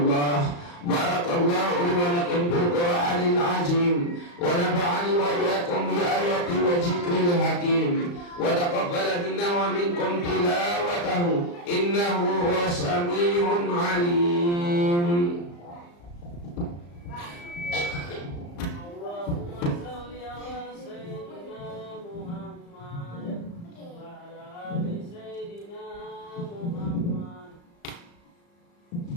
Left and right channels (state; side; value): late; right; 35 ms